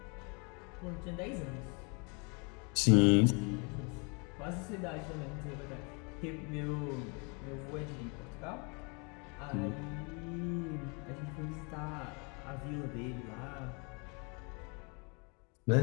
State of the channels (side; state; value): right; quieter; 33.4 dB